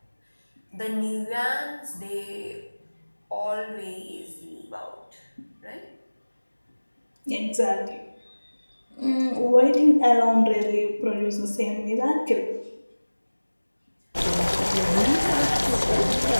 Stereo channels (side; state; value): both; inverted; correlation -1.00